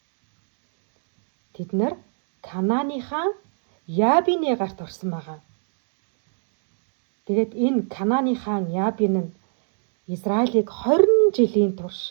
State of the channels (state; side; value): silent; left; digital silence